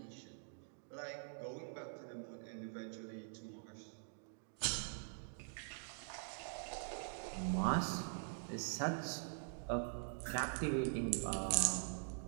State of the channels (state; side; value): silent; left; digital silence